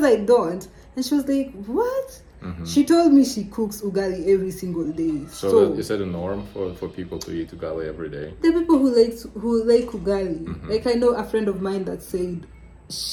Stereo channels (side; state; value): both; identical; correlation 1.00